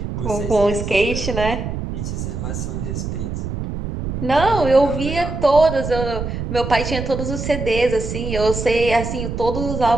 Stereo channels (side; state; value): right; noise; rumble, 5 dB below the sound